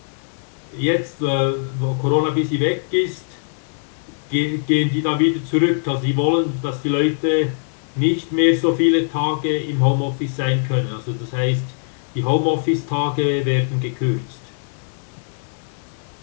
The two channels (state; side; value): silent; right; digital silence